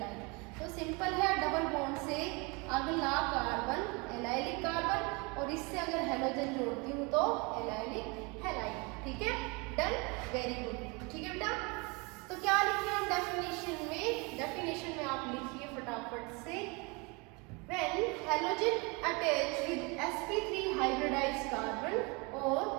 तो सिंपल है, डबल बॉन्ड से अगला कार्बन एलाइलिक कार्बन और इससे अगर हैलोजन जोड़ती हूँ तो एलाइलिक हैलाइड। ठीक है, डन, वेरी गुड। ठीक है बेटा, तो क्या लिखिए हम डेफिनेशन में, डेफिनेशन में आप लिखिए फटाफट से, when halogen attach with sp3 hybridized carbon और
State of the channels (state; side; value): quieter; left; 28.8 dB